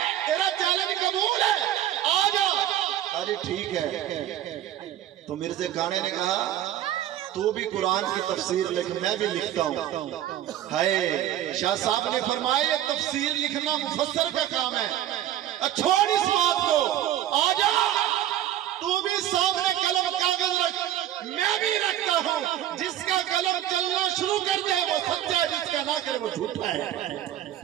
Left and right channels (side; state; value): left; quieter; 12.1 dB